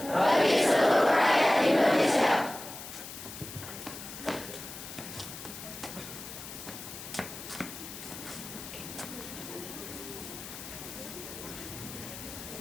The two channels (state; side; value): noise; left; hiss, 11 dB below the sound